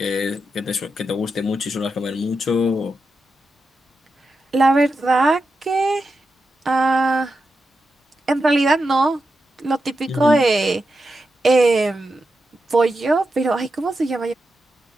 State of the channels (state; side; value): normal; both; correlation 0.88